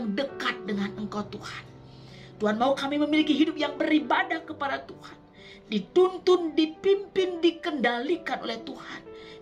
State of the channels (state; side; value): identical; both; correlation 1.00